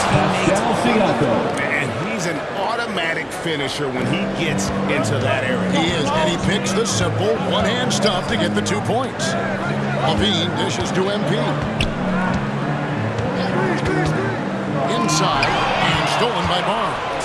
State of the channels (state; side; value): identical; both; correlation 1.00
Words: teammates are. And he's an automatic finisher when he gets into that area. He is, and he picks the simple one-hand stuff to get the 2 points. Levine dishes to MP. Inside, and stolen by